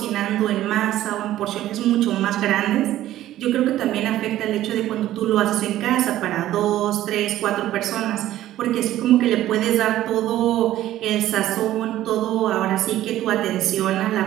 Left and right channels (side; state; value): left; quieter; 13.8 dB